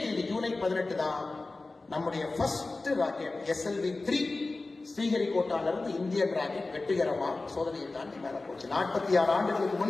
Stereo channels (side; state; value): right; quieter; 3.4 dB